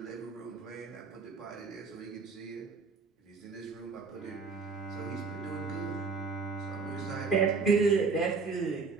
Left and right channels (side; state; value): left; quieter; 4.6 dB